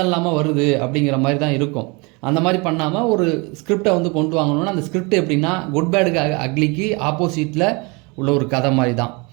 இல்லாமல் வருது அப்படிங்கிற மாதிரி தான் இருக்கும். அந்த மாதிரி பண்ணாமல் ஒரு ஸ்கிரிப்டை வந்து கொண்டு வாங்கணும்னா அந்த ஸ்கிரிப்ட் எப்படின்னா குட் பேடுக்கு அக்லிக்கு ஆப்போசிட்டில் உள்ள ஒரு கதை மாதிரி தான்.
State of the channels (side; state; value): left; quieter; 28.6 dB